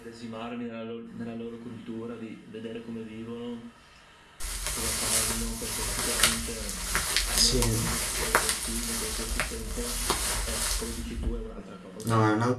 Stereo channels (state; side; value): identical; both; correlation 1.00